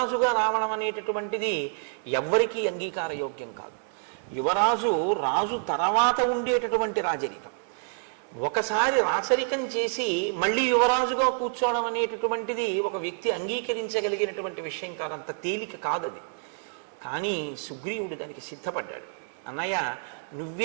రావడం అనేటటువంటిది ఎవ్వరికీ అంగీకారయోగ్యం కాదు. యువరాజు రాజు తర్వాత ఉండేటటువంటి రాజరికం. ఒకసారి రాచరికం చేసి మళ్ళీ యువరాజుగా కూర్చోవడం అనేటటువంటిది ఒక వ్యక్తి అంగీకరించగలిగినటువంటి విషయం కాదు, అంత తేలిక కాదది. కానీ సుగ్రీవుడు దానికి సిద్ధపడ్డాడు. అన్నయ్య,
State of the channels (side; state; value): left; silent; digital silence